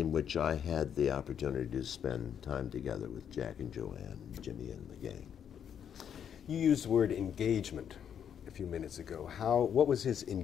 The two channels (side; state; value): right; quieter; 8.6 dB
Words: which I had the opportunity to spend time together with Jack and Joanne, and Jimmy and the gang. You used the word engagement a few minutes ago. What was his